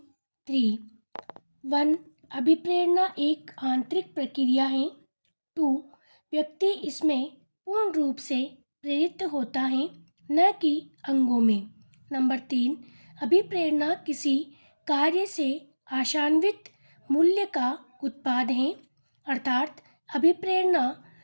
3। 1, अभिप्रेरणा एक आंतरिक प्रक्रिया है। 2, व्यक्ति इसमें पूर्ण रूप से प्रेरित होता है, न कि अंगों में। नंबर 3, अभिप्रेरणा किसी कार्य से आशान्वित मूल्य का उत्पाद है, अर्थात अभिप्रेरणा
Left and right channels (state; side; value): inverted; both; correlation -1.00